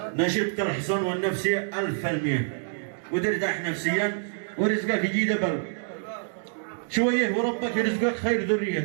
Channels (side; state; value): left; silent; digital silence